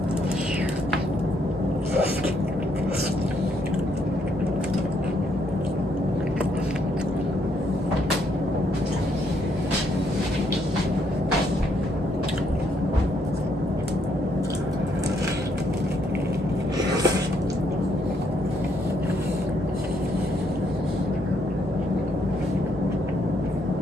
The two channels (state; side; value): normal; both; correlation 0.73